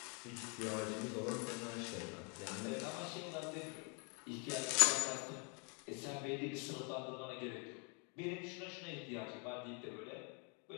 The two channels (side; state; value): right; quieter; 36.1 dB